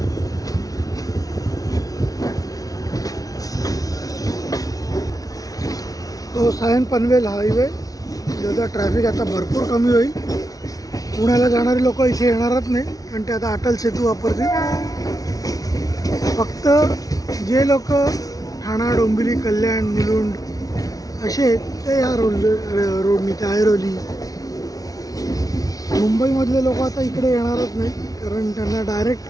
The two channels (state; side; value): late; right; 0.18 ms